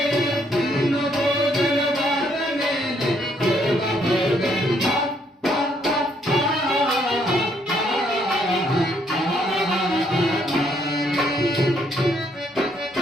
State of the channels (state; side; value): normal; both; correlation 0.70